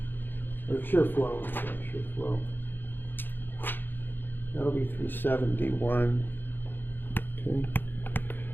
Or shear flow. Sorry, shear flow. That'll be 371. Okay.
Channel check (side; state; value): right; late; 0.095 ms